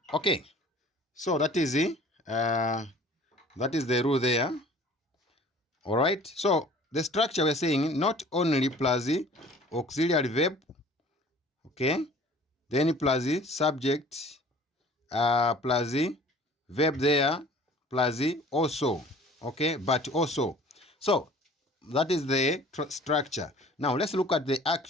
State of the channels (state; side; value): normal; both; correlation 0.49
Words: Okay, so that is the rule there. All right, so the structure we're saying not only plus the auxiliary verb, okay, then plus the subject, plus the verb there, plus the also, okay, but also. So that is the structure. Now let's look at the